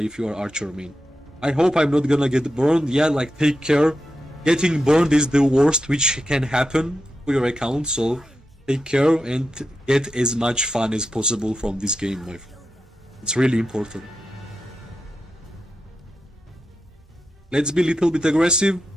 you are archer main. I hope I'm not gonna get burned. Yeah, like, take care. Getting burned is the worst which can happen to your account, so take care and get as much fun as possible from this game, my friend. It's really important. Let's be a little bit aggressive.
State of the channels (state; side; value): normal; both; correlation 0.88